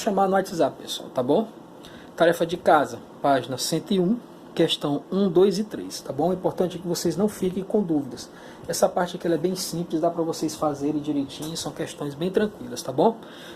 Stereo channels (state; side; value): identical; both; correlation 1.00